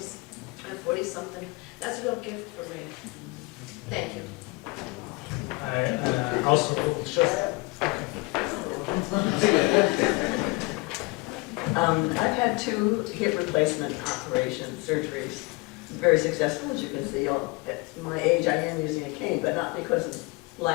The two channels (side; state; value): right; quieter; 25.8 dB